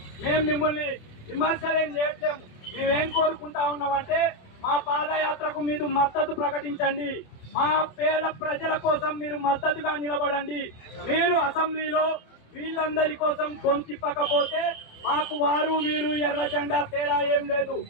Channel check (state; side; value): late; right; 27 ms